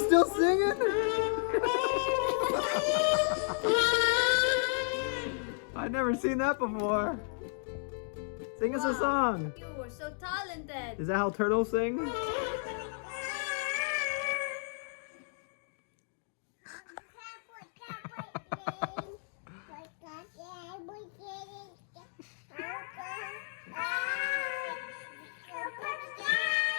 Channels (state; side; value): silent; right; digital silence